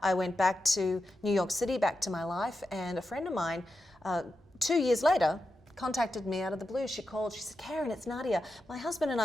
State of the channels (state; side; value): normal; both; correlation 0.89